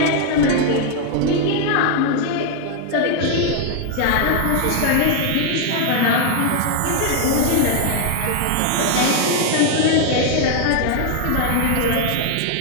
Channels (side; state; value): both; different; correlation 0.00